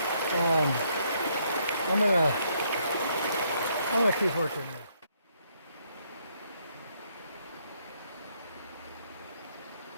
I'm gonna keep working there.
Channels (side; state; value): both; inverted; correlation -0.71